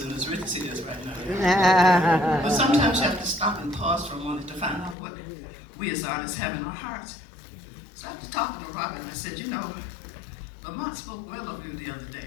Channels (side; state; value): right; drops out; at 5.0 s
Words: and as rich as he is right now. But sometimes you have to stop and pause for a moment to find out what we as artists have in our hearts. So after talking to Robin, I said, you know, Lamont spoke well of you the other